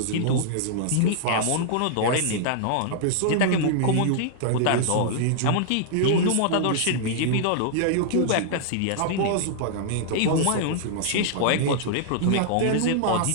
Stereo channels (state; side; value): different; both; correlation -0.01